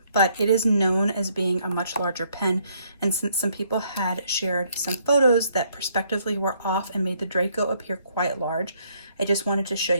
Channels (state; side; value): inverted; both; correlation -0.68